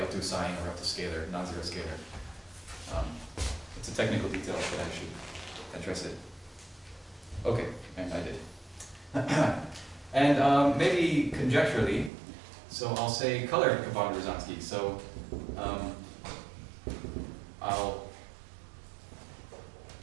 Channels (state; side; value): drops out; left; at 12.1 s